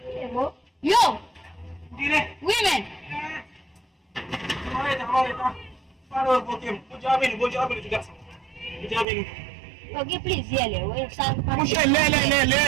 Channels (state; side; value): drops out; left; at 9.1 s